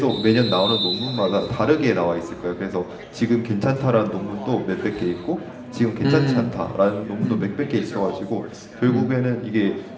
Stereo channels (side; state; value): both; identical; correlation 1.00